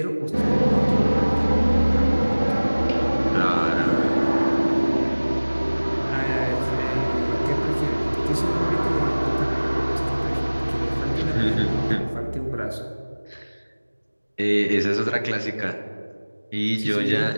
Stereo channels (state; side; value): inverted; both; correlation -1.00